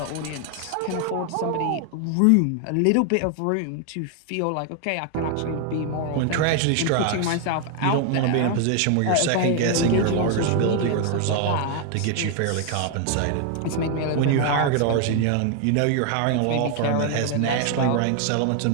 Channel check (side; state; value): both; different; correlation 0.00